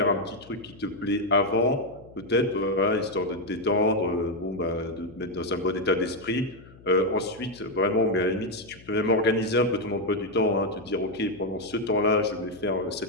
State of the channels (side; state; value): left; noise; hum, 22 dB below the sound